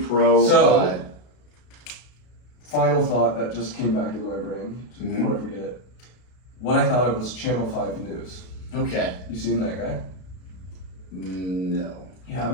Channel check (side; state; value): right; late; 32 ms